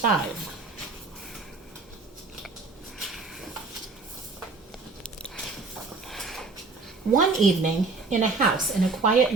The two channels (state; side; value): quieter; left; 4.0 dB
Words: One evening, in a house in a quiet